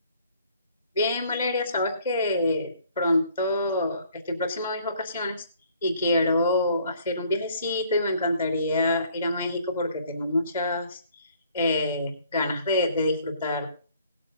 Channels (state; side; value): inverted; both; correlation -0.60